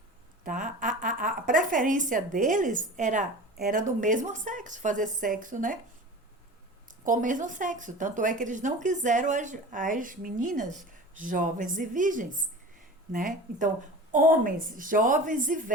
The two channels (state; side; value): normal; both; correlation 0.36